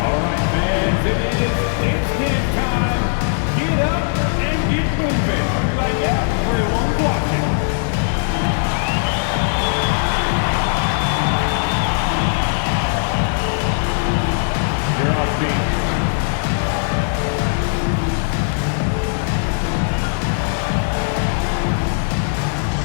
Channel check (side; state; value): right; silent; digital silence